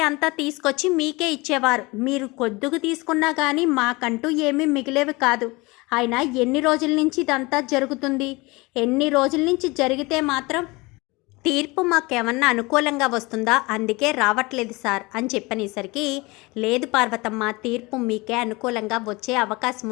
అంత తీసుకొచ్చి మీకే ఇచ్చేవారు. మీరు కొద్దుకు తీసుకున్నా కానీ మాకంటూ ఏమీ మిగిలేవి కాదు. అయినా ఎన్ని రోజుల నుంచి ఇదంతా జరుగుతుంది? ఎన్ని రోజుల నుంచి జరిగితే మాత్రం తీర్పు మాకేమన్నా అనుకూలంగా వస్తుందా, అందుకే రావట్లేదు సార్ అని చెప్పనేసరికి, లేదు పార్వతమ్మ, తీర్పు మీకే అనుకూలంగా వచ్చే అవకాశం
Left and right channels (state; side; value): quieter; right; 24.0 dB